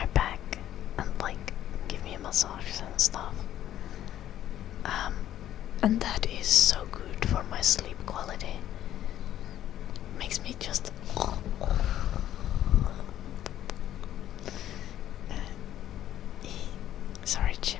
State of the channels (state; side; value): quieter; right; 12.0 dB